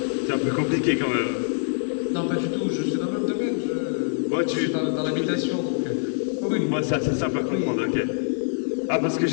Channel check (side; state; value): right; silent; 62 dB below the other